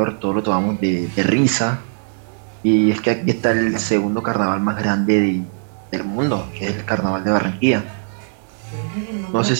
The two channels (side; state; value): left; silent; 57 dB below the other